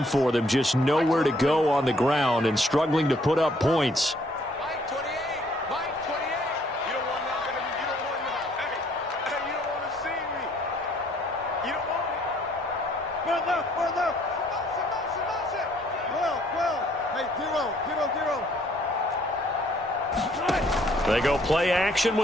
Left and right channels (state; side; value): normal; both; correlation 0.64